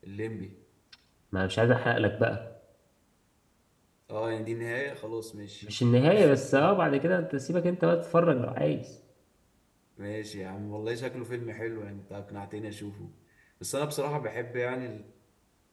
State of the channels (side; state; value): both; identical; correlation 1.00